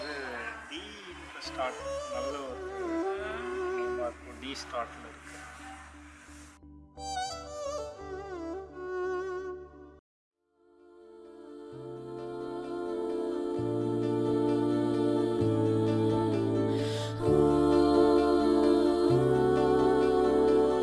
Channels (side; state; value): both; identical; correlation 1.00